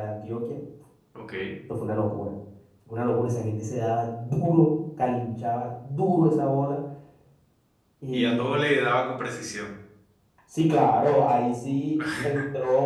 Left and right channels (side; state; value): both; identical; correlation 1.00